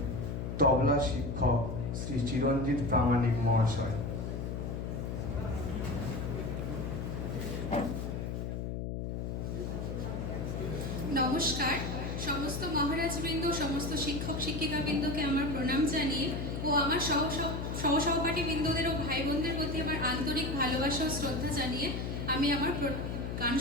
তবলা শিক্ষক শ্রী চিরঞ্জিত প্রামাণিক মহাশয়। নমস্কার। সমস্ত মহারাজবৃন্দ, সমস্ত শিক্ষক শিক্ষিকাবৃন্দকে আমার প্রণাম জানিয়ে ও আমার সহসহপাঠী বৃন্দদের ও ভাই বোনদের প্রতি আমার আন্তরিক ভালোবাসা ও শ্রদ্ধা জানিয়ে আমি আমার গান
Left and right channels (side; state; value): left; noise; hum, 3 dB below the sound